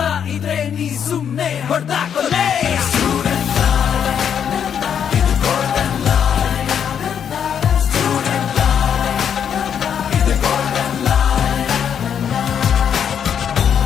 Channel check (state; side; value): quieter; right; 8.2 dB